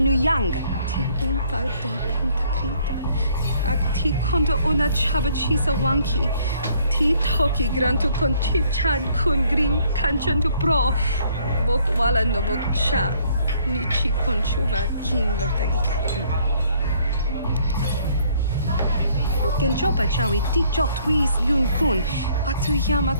Ti umpa do punta krita. Akti kondo ona chabachisa wanki. Ti toki grantu kon chichan kun green kanchan tu pro. Bok wala no bok cha. Nichi kon chuva kin lorta ikakun. Genjopa chawi tikchok twis yun kun. Atuyama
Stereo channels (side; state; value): both; inverted; correlation -0.63